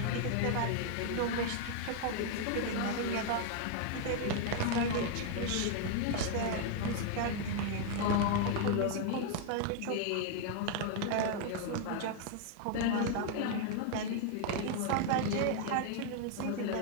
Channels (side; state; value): both; different; correlation 0.00